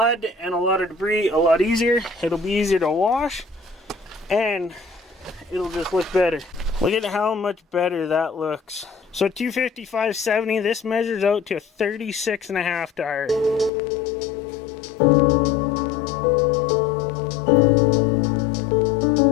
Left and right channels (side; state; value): right; drops out; at 13.7 s